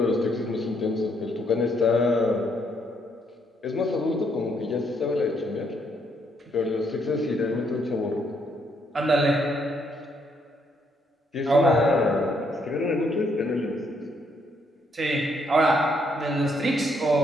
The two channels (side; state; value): both; normal; correlation 0.73